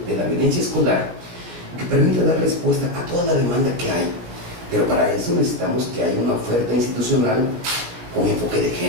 de la violencia escolar que permita dar respuesta a toda la demanda que hay. Pero para eso necesitamos que haya una oferta institucional con enfoque de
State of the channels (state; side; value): late; left; 17 ms